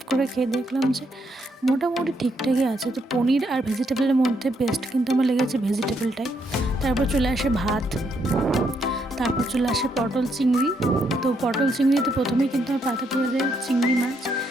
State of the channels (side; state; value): both; normal; correlation 0.76